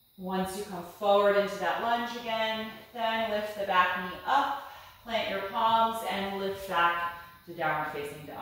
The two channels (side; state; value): both; identical; correlation 1.00